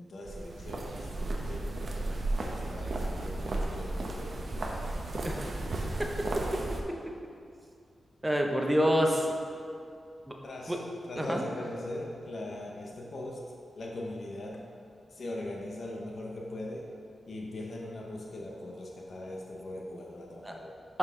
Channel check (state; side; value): normal; both; correlation 0.92